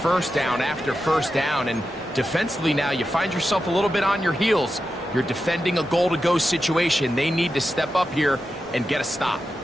first down after first down. And defensively now, you find yourself a little bit on your heels. You're defending a goal-to-go situation. They need to step up here and get a stop.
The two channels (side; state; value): both; normal; correlation 0.90